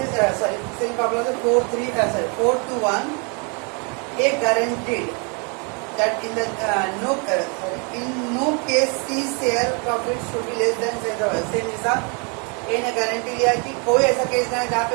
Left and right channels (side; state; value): left; quieter; 35.3 dB